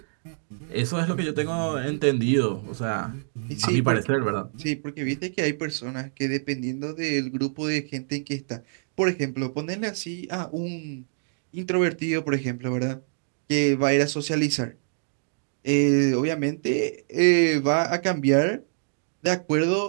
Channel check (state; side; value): silent; left; digital silence